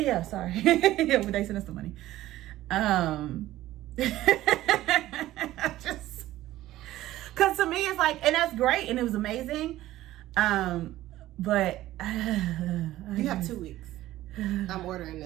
sorry. Yeah, but they sent us the money. Just because to me it's like, and that's great and it was amazing, but you have 2 weeks. I'm ordering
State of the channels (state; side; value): quieter; left; 15.1 dB